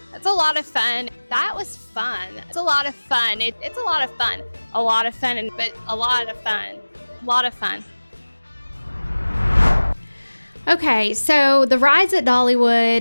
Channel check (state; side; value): inverted; both; correlation -1.00